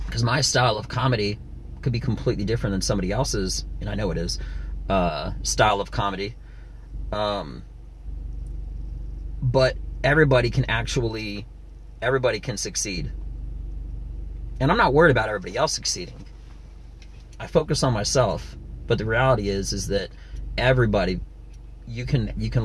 Because my style of comedy could be completely different than somebody else's, and I know it is, style of comedy. But everybody can succeed. And I'm not worried about everybody else succeeding. I focus on myself. But the reality is that everybody, you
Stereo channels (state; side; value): identical; both; correlation 1.00